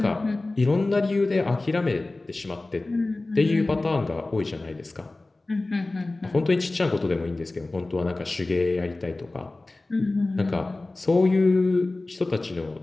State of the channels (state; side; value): quieter; right; 3.0 dB